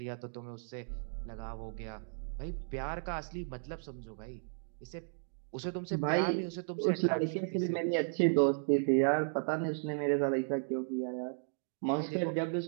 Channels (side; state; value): left; silent; digital silence